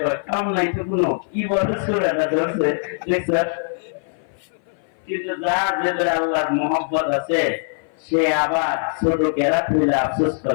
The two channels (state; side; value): silent; right; 58 dB below the other